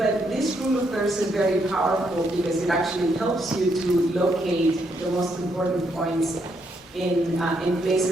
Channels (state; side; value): normal; both; correlation 0.76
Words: this rule of thirds is very powerful because it actually helps you to locate the most important points in